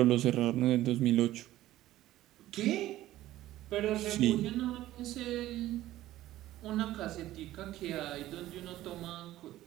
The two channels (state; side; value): quieter; left; 14.9 dB